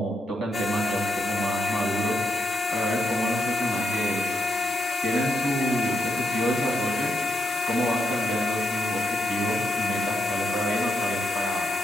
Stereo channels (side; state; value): both; normal; correlation 0.81